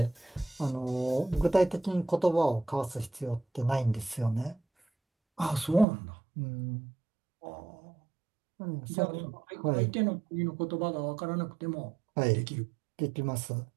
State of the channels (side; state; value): left; drops out; at 5.9 s